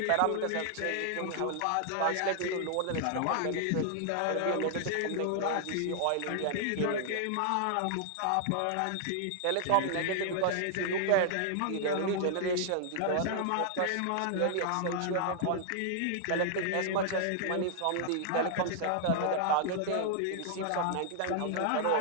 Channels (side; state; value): both; different; correlation 0.00